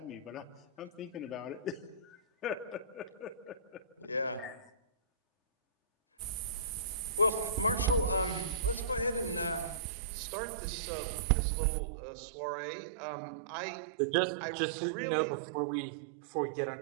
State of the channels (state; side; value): drops out; left; at 9.8 s